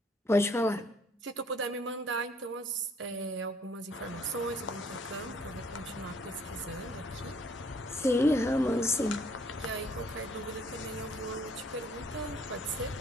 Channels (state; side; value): normal; both; correlation 0.63